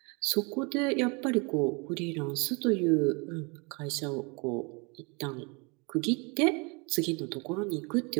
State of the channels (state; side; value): quieter; left; 30.2 dB